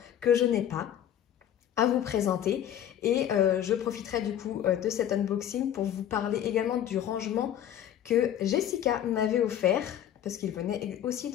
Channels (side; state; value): right; quieter; 10.6 dB